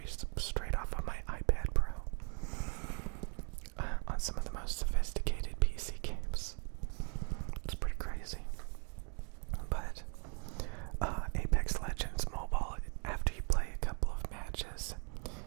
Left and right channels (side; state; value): left; quieter; 39.6 dB